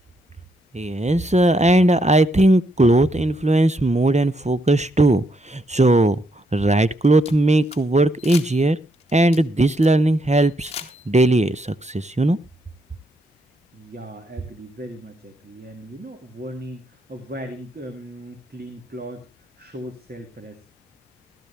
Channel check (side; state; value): both; normal; correlation 0.76